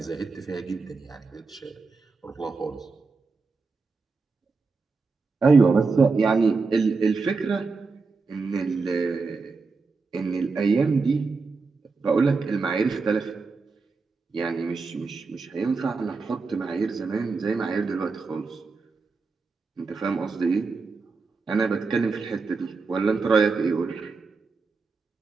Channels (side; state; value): left; quieter; 4.4 dB